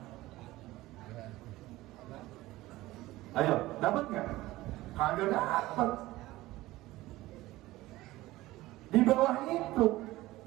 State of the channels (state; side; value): quieter; left; 17.7 dB